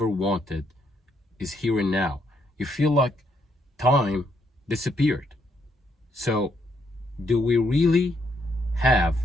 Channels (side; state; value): both; normal; correlation 0.74